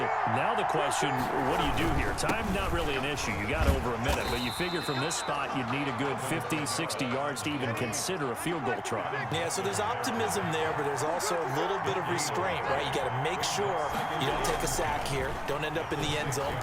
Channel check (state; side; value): identical; both; correlation 1.00